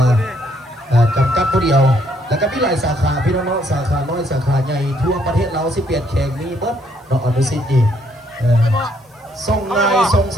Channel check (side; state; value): both; normal; correlation 0.69